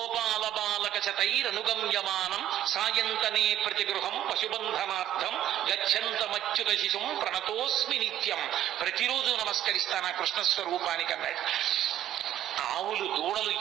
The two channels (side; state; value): left; quieter; 11.9 dB